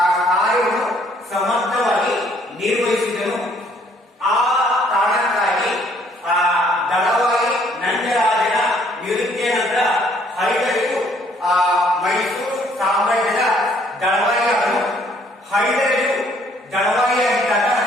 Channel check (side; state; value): both; normal; correlation 0.63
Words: ಕಾರ್ಯವನ್ನು ಸಮರ್ಥವಾಗಿ ನಿರ್ವಹಿಸಿದನು. ಆ ಕಾರಣಕ್ಕಾಗಿ ದಳವಾಯಿ ನಂದರಾಜನ ನಿವೃತ್ತಿಯ ನಂತರ ಹೈದರಾಲಿಯು ಮೈಸೂರು ಸಾಮ್ರಾಜ್ಯದ ದಳವಾಯಿಯಾದನು. ಹೈದರಾಲಿಯು ದಳವಾಯಿಯಾಗಿದ್ದಾಗ